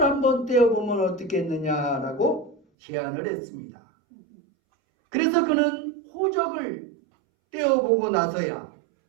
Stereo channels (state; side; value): drops out; left; at 2.6 s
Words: 한번 떼어보면 어떻겠느냐라고 제안을 했습니다. 그래서 그는 호적을 떼어보고 나서야